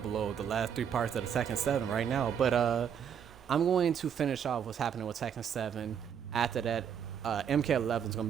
the last 3 parts of the Tekken 7 right now, but I'm going to finish off what's happening with Tekken 7. After that, MK11 is going to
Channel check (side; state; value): left; quieter; 8.1 dB